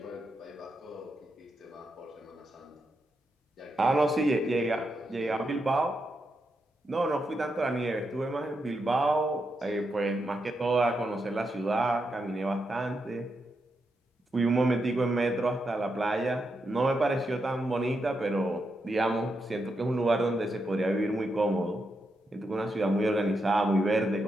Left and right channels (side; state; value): both; normal; correlation 0.84